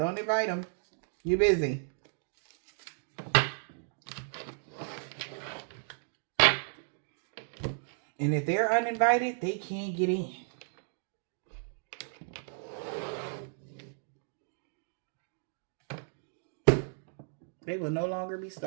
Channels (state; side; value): silent; left; digital silence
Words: invite them. You're busy. And if they're uninvited, they can't get in. They will no longer be